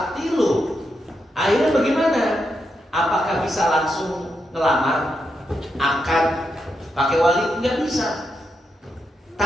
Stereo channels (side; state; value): both; normal; correlation 0.84